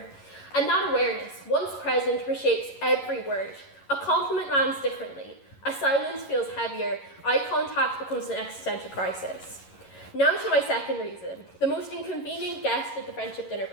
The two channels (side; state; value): right; late; 11 ms